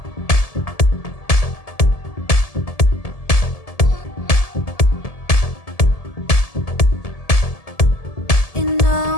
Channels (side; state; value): right; late; 1.7 ms